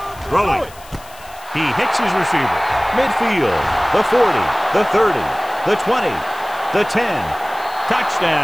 Throwing. He hits his receiver. Midfield. The 40. The 30. The 20. The 10.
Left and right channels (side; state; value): left; noise; hiss, 22 dB below the sound